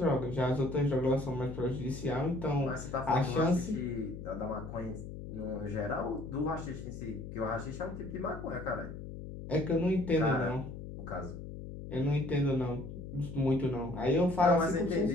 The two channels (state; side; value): noise; left; hum, 10 dB below the sound